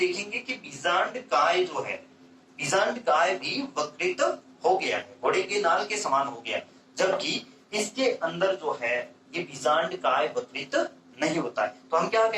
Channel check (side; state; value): both; identical; correlation 1.00